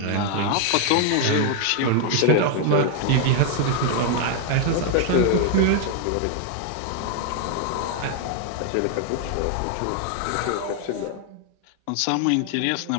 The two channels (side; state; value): both; different; correlation 0.00